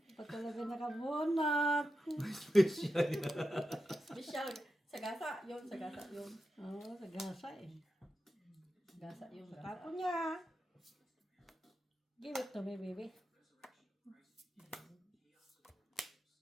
Pa talaga nakabunot. Special. Sagasa, yun, sagasa, yun. Oo, sa gasa eh. Gasa yung gasa. Tapon niya. Give it to me, baby.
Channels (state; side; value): normal; both; correlation 0.89